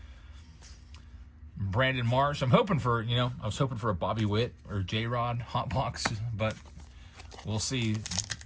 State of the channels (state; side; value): identical; both; correlation 1.00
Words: Brandon Marsh. I was hoping for a Bobby Witt or J-Rod hot box, but we'll see.